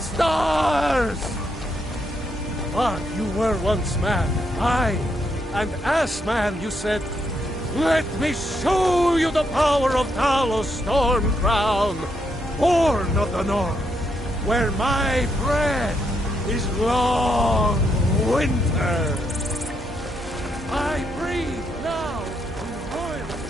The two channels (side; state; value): both; normal; correlation 0.78